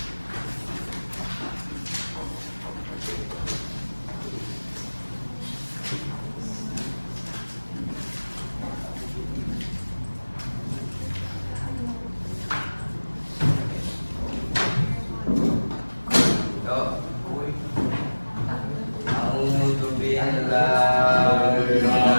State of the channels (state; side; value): inverted; both; correlation -1.00